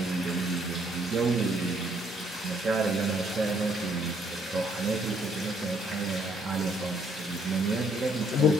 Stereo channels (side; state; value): both; normal; correlation 0.67